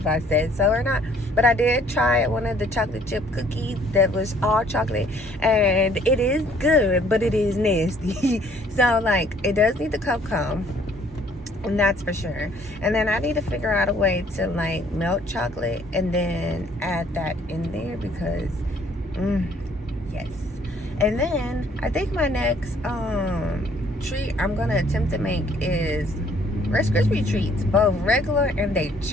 I said so or not, but I did try one of the chocolate chip cookies that was all chocolate, and it is good, but it is nasty. So, like, it does need the cocoa, and that's for sure. And then I need to figure out a way to, like, melt chocolate and then add that in there because, yes. And then I think my next treat I'm gonna attempt to make is Rice Krispie treats, both regular and the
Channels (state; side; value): normal; both; correlation 0.60